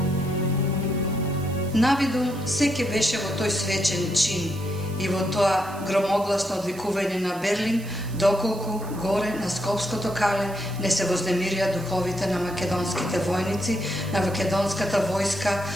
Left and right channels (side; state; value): right; noise; hiss, 19 dB below the sound